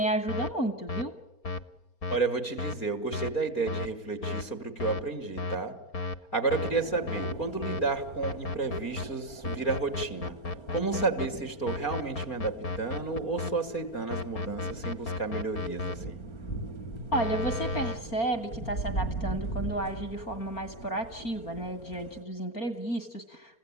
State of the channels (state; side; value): late; right; 4.3 ms